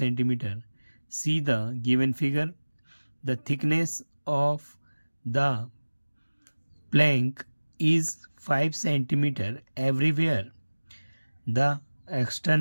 See the given figure. The thickness of the plank is 5 cm everywhere. The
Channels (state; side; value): inverted; both; correlation -1.00